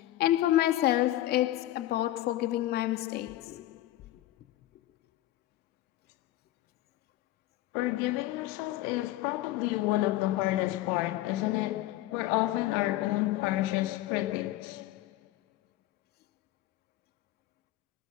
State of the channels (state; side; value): quieter; right; 15.3 dB